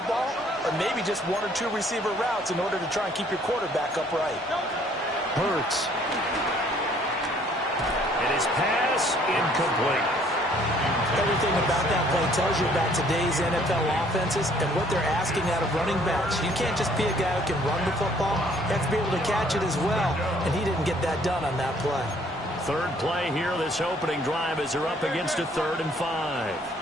ball, or maybe just 1 or 2 receiver routes in order to try and keep your quarterback upright. Hurts. And his pass incomplete. Everything about that play tells you about today's NFL offenses and what they're asking out of running backs. You can't just be a guy who can run the football. You have to be able to catch it as well, and he didn't get that done on that play. Third play here, this opening drive, as they're up against a 3rd and 5.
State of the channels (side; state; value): both; normal; correlation 0.61